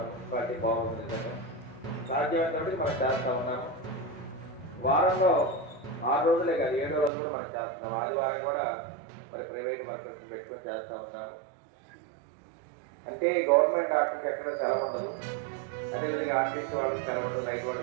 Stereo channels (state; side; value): drops out; left; at 7.1 s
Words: మున్సిపాలిటీ బాగుంది. సాధ్యమైనప్పటికీ మనం చేస్తూ ఉన్నాము. వారంలో 6 రోజులే కాదు, 7వ రోజు కూడా మనం చేస్తున్నాం. ఆదివారం కూడా మరి ప్రైవేట్ వర్కర్స్ పెట్టుకొని చేస్తూ ఉన్నాము. అంటే గవర్నమెంట్ డాక్టర్కి ఎక్కడ సెలవు ఉండదు, అదేవిధంగా ఆర్టీసీ వాళ్ళకి సెలవు ఉండదు, రైతు